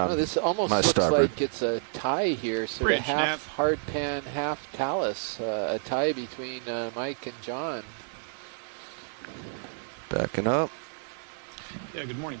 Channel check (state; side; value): silent; left; digital silence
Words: Oh, this almost my looks starboard. like it's a tie here, sort Bridge, of half Nav. hard pan, half talus, a tie between Mike and John. Backing up. Yeah, good morning.